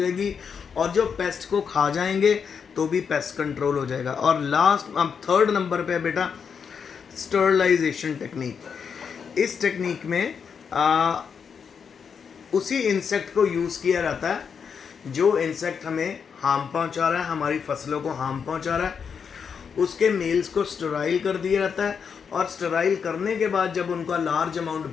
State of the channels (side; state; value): right; quieter; 6.5 dB